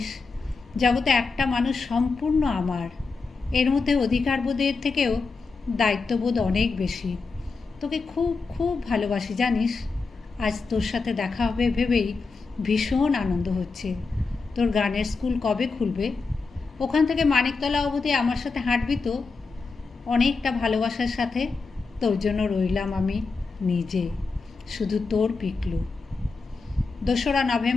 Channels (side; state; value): right; quieter; 4.3 dB